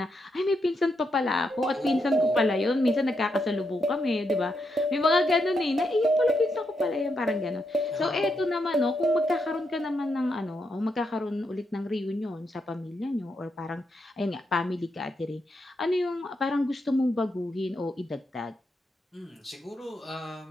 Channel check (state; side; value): normal; both; correlation 0.82